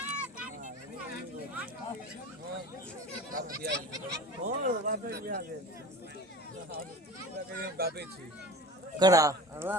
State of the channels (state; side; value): normal; both; correlation 0.36